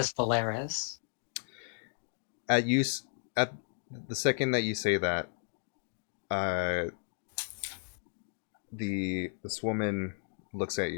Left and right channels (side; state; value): right; silent; digital silence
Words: Valeris. At use at the second that you say that, uh, this woman looks at